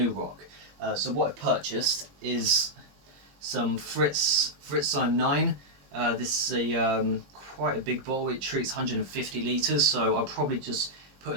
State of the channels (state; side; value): late; left; 21 ms